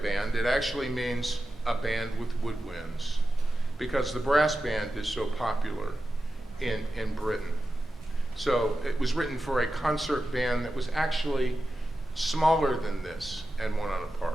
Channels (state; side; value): normal; both; correlation 0.92